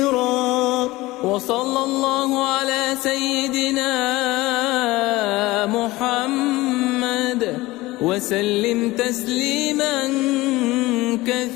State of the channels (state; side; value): quieter; right; 19.6 dB